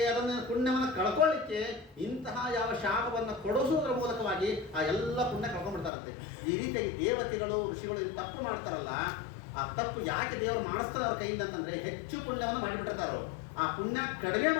ಅದನ್ನು ಪುಣ್ಯವನ್ನು ಕಳ್ಕೊಳ್ಳಿಕ್ಕೆ ಇಂತಹ ಯಾವ ಶಾಪವನ್ನು ಕೊಡಿಸುವುದರ ಮೂಲಕವಾಗಿ ಆ ಎಲ್ಲ ಪುಣ್ಯ ಕಳ್ಕೊಂಡ್ಬಿಡ್ತಾರಂತೆ. ಈ ರೀತಿಯಾಗಿ ದೇವತೆಗಳು ಋಷಿಗಳು ತಪ್ಪು ಮಾಡ್ತಾರಲ್ಲ, ಆ ತಪ್ಪು ಯಾಕೆ ದೇವರು ಮಾಡಿಸ್ತಾರೆ ಅವ್ರ ಕೈಯಿಂದ ಅಂತಂದ್ರೆ, ಹೆಚ್ಚು ಪುಣ್ಯವನ್ನು ಮಾಡಿಬಿಟ್ಟಿರ್ತಾರೋ. ಆ ಪುಣ್ಯ ಕಡಿಮೆ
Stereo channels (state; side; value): drops out; right; at 5.9 s